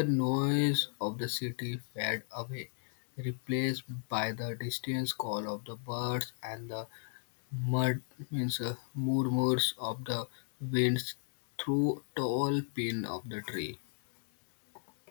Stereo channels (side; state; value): right; silent; digital silence